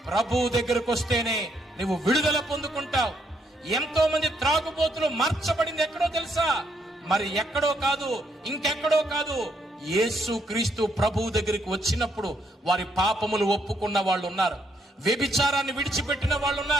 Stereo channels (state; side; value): normal; both; correlation 0.74